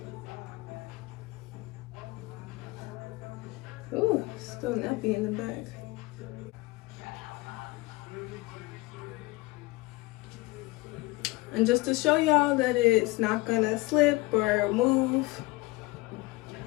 Ooh, still nappy in the back. And just to show y'all that it's not gonna slip or move.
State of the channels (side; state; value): right; quieter; 22.6 dB